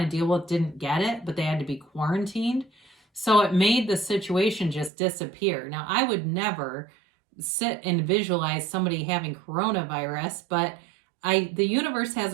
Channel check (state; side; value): drops out; left; at 4.9 s